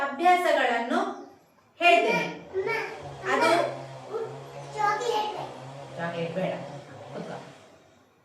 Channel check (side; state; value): both; identical; correlation 1.00